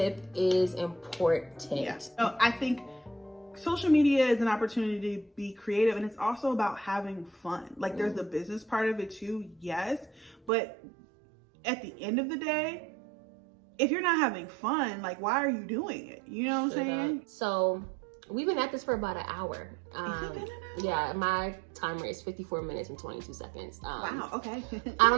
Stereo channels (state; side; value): drops out; left; at 10.5 s